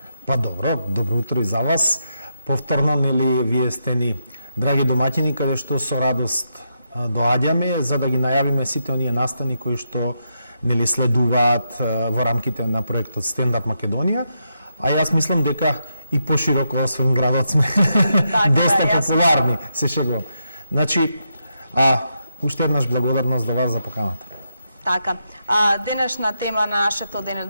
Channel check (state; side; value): inverted; both; correlation -0.83